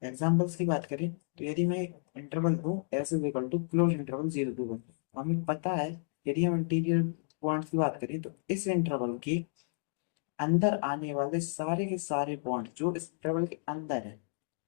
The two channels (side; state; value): right; silent; digital silence